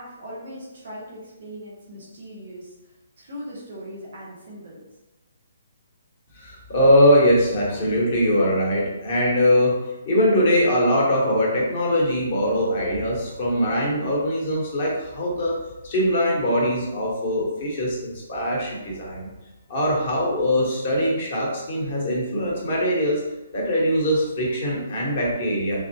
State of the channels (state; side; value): inverted; both; correlation -0.64